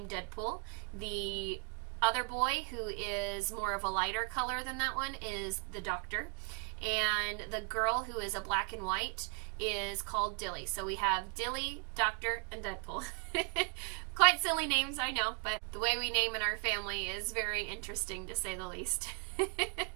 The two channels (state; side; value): quieter; left; 36.9 dB